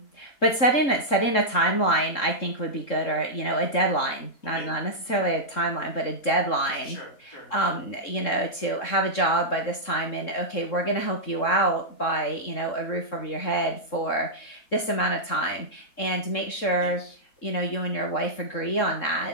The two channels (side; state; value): right; late; 3.7 ms